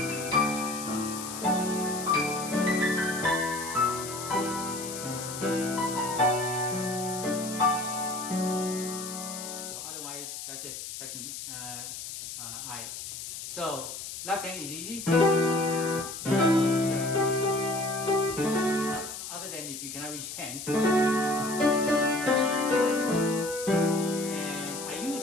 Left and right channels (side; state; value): left; noise; hiss, 8 dB below the sound